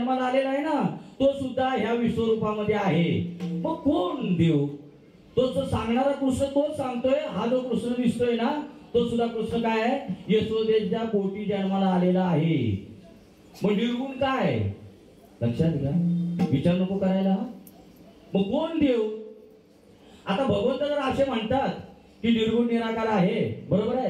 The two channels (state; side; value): identical; both; correlation 1.00